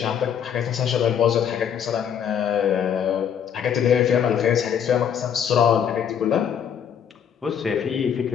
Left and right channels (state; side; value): quieter; right; 8.4 dB